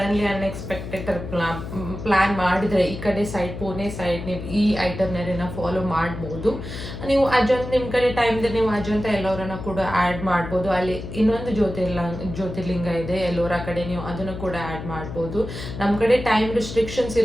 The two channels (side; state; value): left; noise; hum, 9 dB below the sound